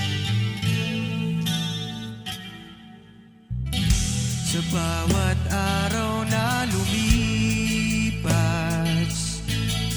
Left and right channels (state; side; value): identical; both; correlation 1.00